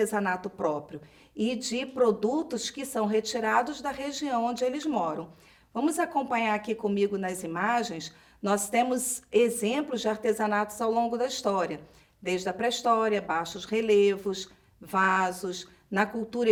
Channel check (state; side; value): identical; both; correlation 1.00